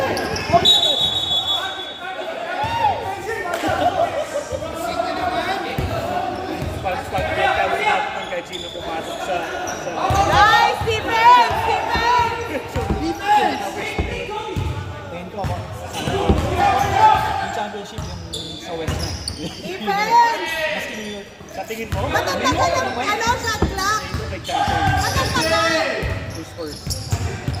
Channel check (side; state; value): both; identical; correlation 1.00